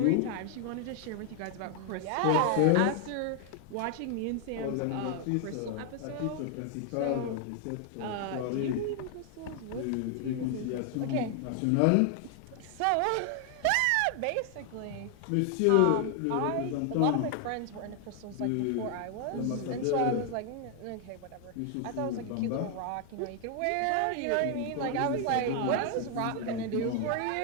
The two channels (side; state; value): both; different; correlation 0.00